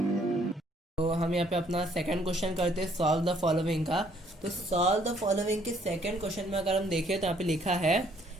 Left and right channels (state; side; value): normal; both; correlation 0.64